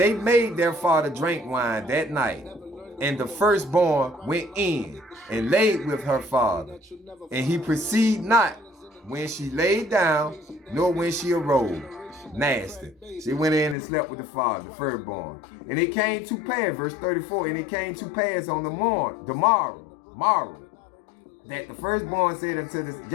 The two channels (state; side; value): drops out; right; at 13.8 s